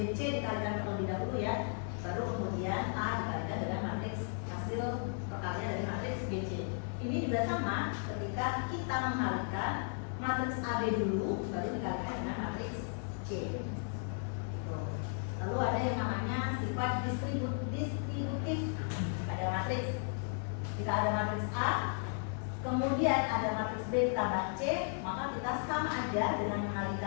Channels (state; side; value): silent; right; 54 dB below the other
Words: dikalikan terlebih dahulu ya, baru kemudian A dikalikan dengan matriks hasil perkalian dari matriks BC. Ini juga sama ketika kita mengalikan matriks AB dulu, baru dikalikan dengan matriks C. Lalu ada yang namanya sifat distributif pada matriks. Jika ada matriks A, kemudian ada matriks B ditambah C, maka kita sama aja dengan